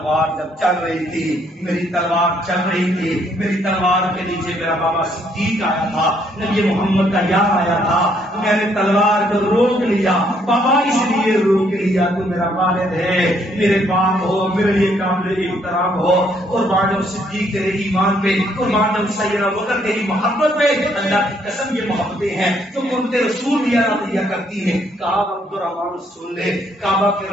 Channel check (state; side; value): normal; both; correlation 0.69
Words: جب چل رہی تھی، میری تلوار چل رہی تھی، میری تلوار کے نیچے میرا بابا صدیق آیا تھا، نبی محمد کا یار آیا تھا، میں نے تلوار کو روک لیا، بابا اس لیے روک لیا تو میرا والد ہے، میرے باپ ہو، میرے لیے قابل احترام ہو، قربان جاؤ صدیق تیرے ایمان پہ، قربان جاؤ سیدنا بکر تیری محبت پہ، اللہ کی قسم یہ محبتیں ہیں جو قربت رسول دیا دیا کرتی ہیں۔ کہا عبد الرحمان سن لے، کعبہ کے